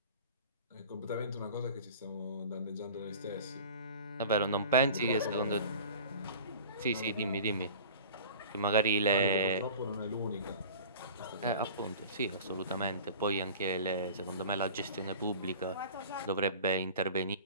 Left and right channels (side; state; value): both; inverted; correlation -0.40